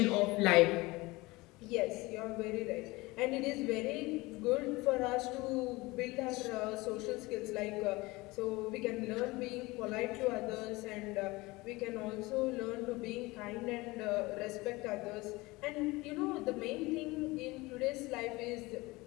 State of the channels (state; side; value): quieter; right; 22.0 dB